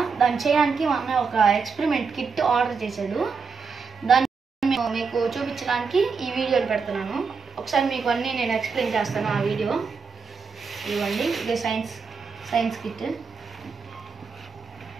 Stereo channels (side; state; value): left; quieter; 5.3 dB